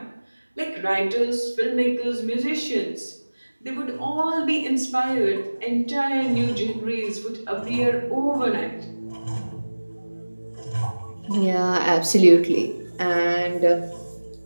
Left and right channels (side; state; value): both; inverted; correlation -1.00